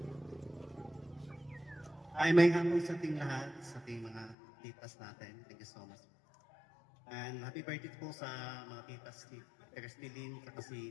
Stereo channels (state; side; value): drops out; right; at 4.4 s